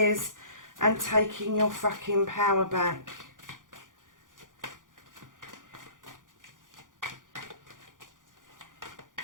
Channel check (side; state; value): left; late; 0.89 ms